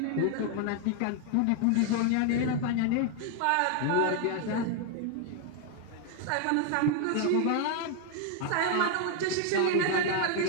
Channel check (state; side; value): different; both; correlation 0.01